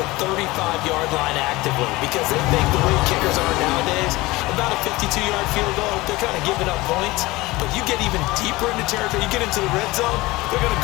35-yard line actively because they think the way kickers are nowadays, about a 52-yard field goal, they're kind of giving up points. But you get even deeper into territory, you get into the red zone, they're going to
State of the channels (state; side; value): quieter; right; 20.7 dB